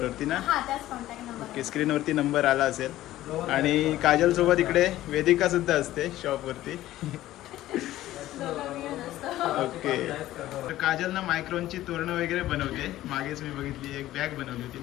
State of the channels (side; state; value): right; quieter; 14.8 dB